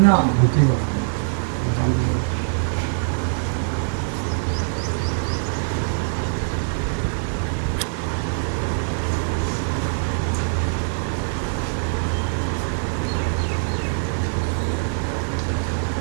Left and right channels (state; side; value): silent; left; digital silence